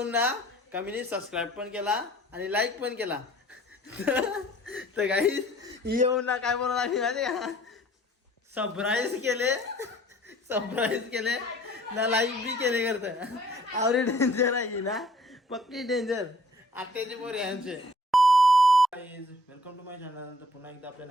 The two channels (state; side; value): normal; both; correlation 0.55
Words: ना का मी सबस्क्राईब पण केला आणि लाईक पण केला तर काही येऊन ना काय बोलणार आम्ही माहिती का सरप्राईज केले ना लाईक बी केले करतं आवरे डेंजर आहे ना पक्की डेंजर आत्याची पोर यांचे वेलकम टू माय चॅनल. तर पुन्हा एकदा आपल्या